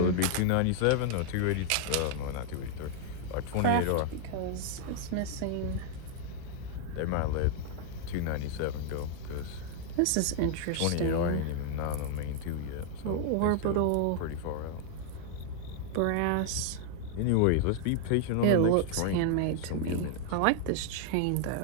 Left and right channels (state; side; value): different; both; correlation 0.00